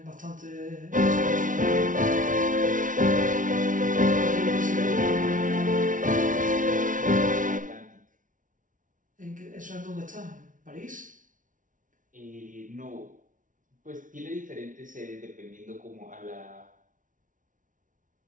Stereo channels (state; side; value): late; left; 0.38 ms